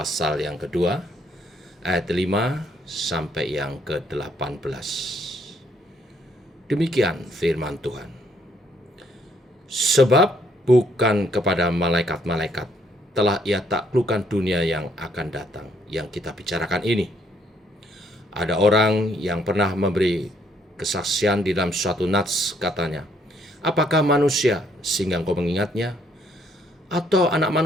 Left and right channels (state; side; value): normal; both; correlation 0.68